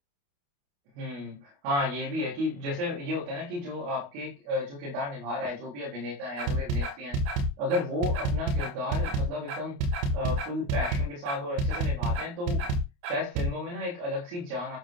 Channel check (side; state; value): left; late; 28 ms